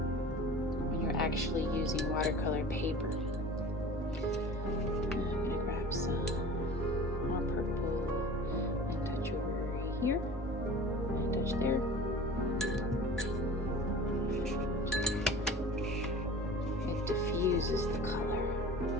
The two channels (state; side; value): normal; both; correlation 0.40